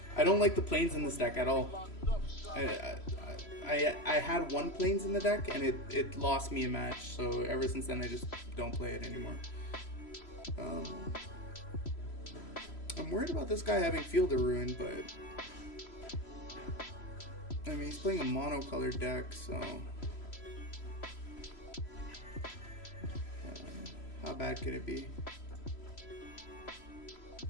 I don't like the plains in this deck at all. I had 1 plains in the deck and it lost me a match, so ever since then I just don't play it anymore. I'm worried about this guy having Field of Ruin, but I mean he's playing a monocolored deck, so how bad could it be?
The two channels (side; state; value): right; late; 3.0 ms